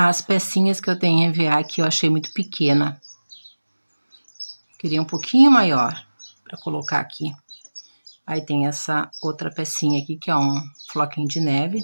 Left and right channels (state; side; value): inverted; both; correlation -1.00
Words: pecinhas que eu tenho em EVA aqui eu achei muito pequena. Queria um pouquinho maior para colocar aqui. Aí tem essa outra pecinha aqui, que é um floquinho de neve,